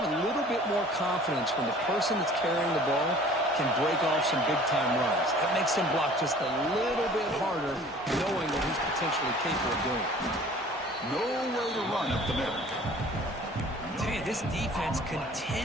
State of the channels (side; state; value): both; normal; correlation 0.49